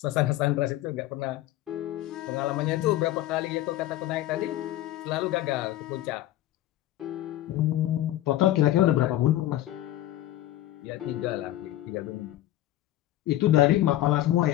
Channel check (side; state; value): right; quieter; 14.5 dB